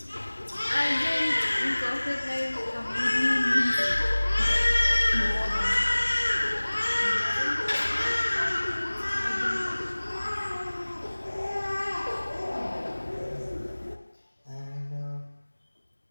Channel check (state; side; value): inverted; both; correlation -1.00